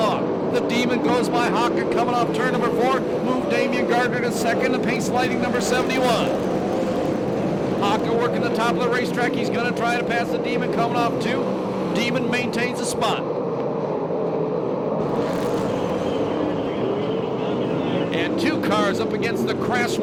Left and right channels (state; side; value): identical; both; correlation 1.00